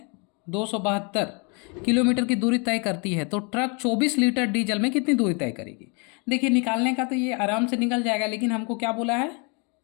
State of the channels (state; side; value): quieter; right; 33.7 dB